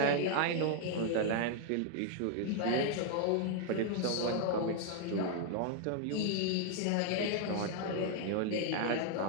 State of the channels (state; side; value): different; both; correlation 0.00